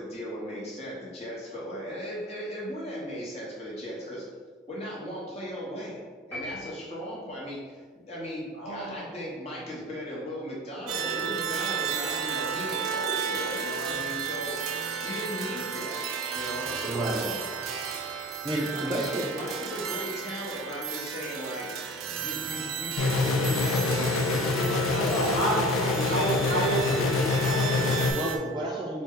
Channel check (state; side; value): normal; both; correlation 0.37